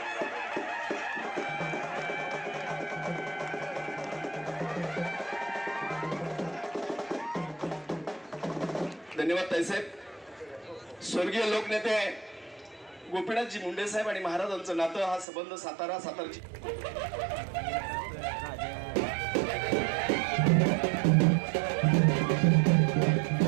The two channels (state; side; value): drops out; left; at 15.2 s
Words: धन्यवाद ताईसाहेब. स्वर्गीय लोकनेते गोपीनाथजी मुंडे साहेब आणि महाराजांचं नातं, हा संबंध सातारची